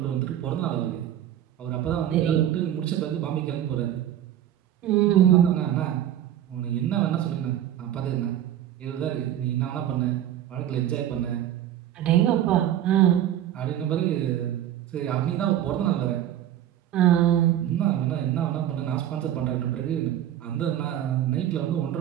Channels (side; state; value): left; quieter; 11.5 dB